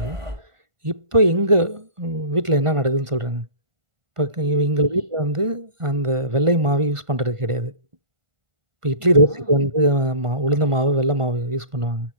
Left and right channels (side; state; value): left; late; 1.5 ms